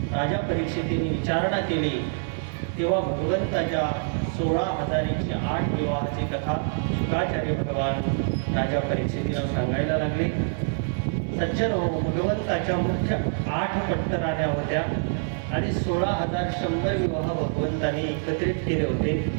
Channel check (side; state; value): left; silent; digital silence